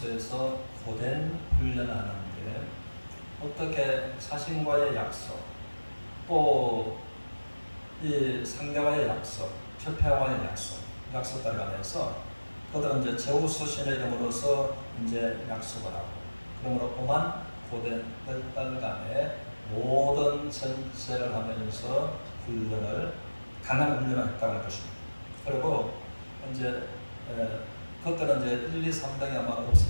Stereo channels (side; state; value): both; inverted; correlation -1.00